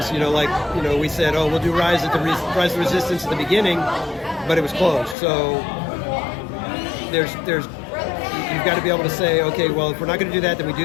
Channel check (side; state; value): right; drops out; at 5.2 s